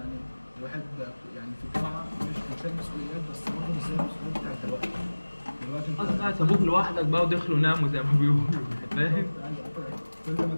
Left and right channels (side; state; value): both; inverted; correlation -1.00